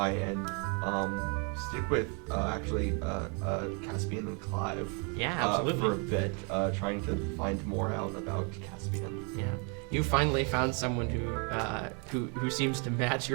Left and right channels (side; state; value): left; quieter; 35.9 dB